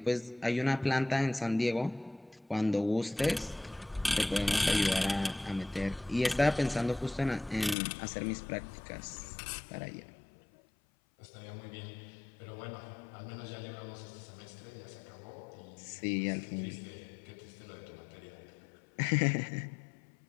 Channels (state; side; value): drops out; right; at 7.8 s